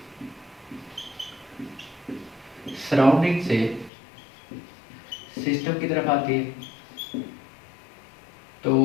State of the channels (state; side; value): drops out; right; at 3.9 s